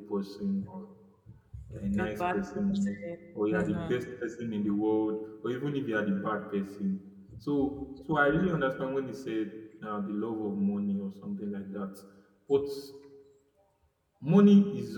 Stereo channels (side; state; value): both; identical; correlation 1.00